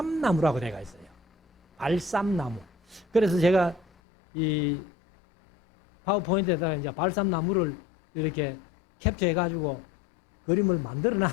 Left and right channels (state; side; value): drops out; right; at 3.9 s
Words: 되어 있어요. 발삼나무. 그래서 제가 이 파워포인트에다가 이제 발삼나무를 이렇게 캡처해가지고 그림을 만들어